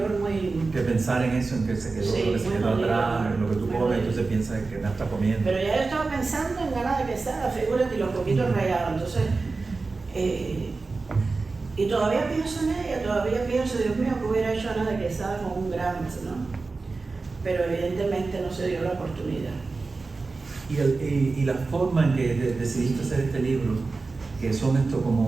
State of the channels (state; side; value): quieter; left; 3.9 dB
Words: muy... Que pensar en eso, en que se quedó, lo que se quedó atrás, en lo que tú comes, entonces piensas que no está comiendo. Pero ya yo estaba pensando en Ana de Quesada, figúrate, y los coquitos rayados, entonces... y todavía pienso en ella, Dios mío, que hubiera hecho Ana de Quesada con un gramo, ¿no? Pero evidentemente no se dio la oportunidad. Y la forma en que decidiste hacer este libro, que son